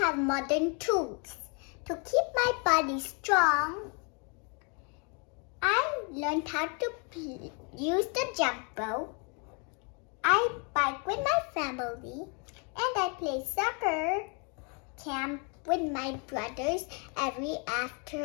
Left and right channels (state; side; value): quieter; right; 35.7 dB